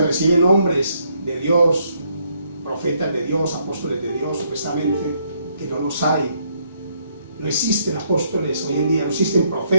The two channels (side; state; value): both; inverted; correlation -0.72